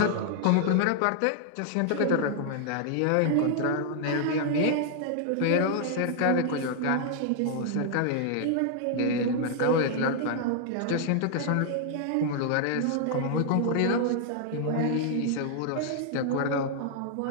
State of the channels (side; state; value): both; different; correlation 0.00